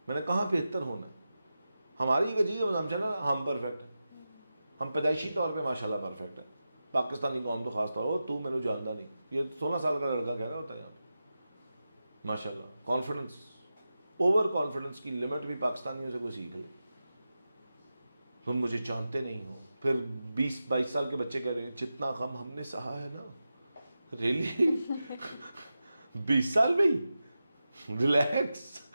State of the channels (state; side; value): inverted; both; correlation -0.92